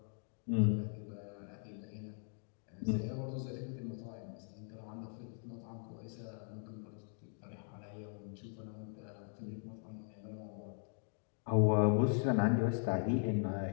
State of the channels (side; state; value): right; silent; 51 dB below the other